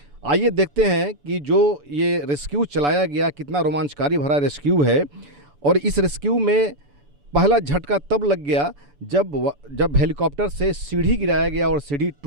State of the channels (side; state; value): left; late; 7.0 ms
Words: आइए देखते हैं कि जो ये रेस्क्यू चलाया गया कितना रोमांचकारी भरा रेस्क्यू है। और इस रेस्क्यू में पहला झटका तब लग गया जब हेलीकॉप्टर से सीढ़ी गिराया गया और सीढ़ी